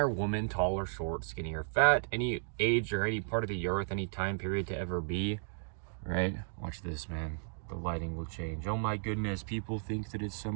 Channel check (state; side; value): silent; left; digital silence